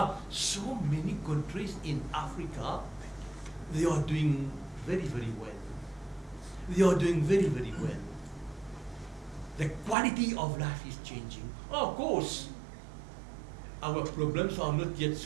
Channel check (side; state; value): left; drops out; at 10.0 s